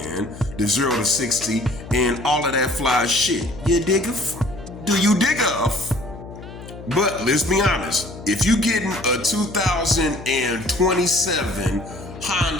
the 0 to 60 and all of that fly shit. You diggeth? Do you diggeth? But let's be honest, if you getting a 2027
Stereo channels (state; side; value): noise; left; hum, 14 dB below the sound